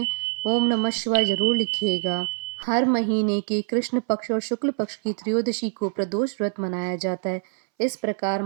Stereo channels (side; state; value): left; silent; 62 dB below the other